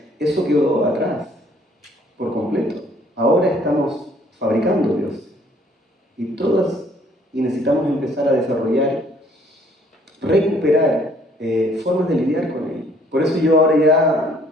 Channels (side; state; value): both; normal; correlation 0.61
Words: Eso quedó atrás, por completo. Ahora estamos fabricando dioses. Y necesitamos empezar a desarrollar, recuperar formas de lidiar con ello. Por eso yo ahora ya